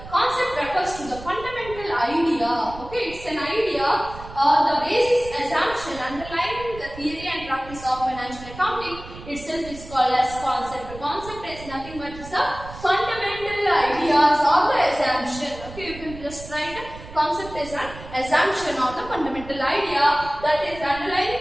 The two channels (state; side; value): noise; right; rumble, 15 dB below the sound